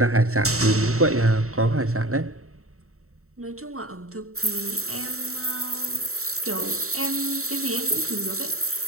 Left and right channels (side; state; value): left; late; 0.64 ms